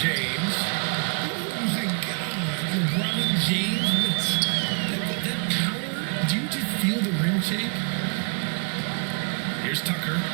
James. Oh my God, LeBron James, that power, do you just feel the rim shake? Here's Tucker.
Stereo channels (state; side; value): quieter; left; 38.4 dB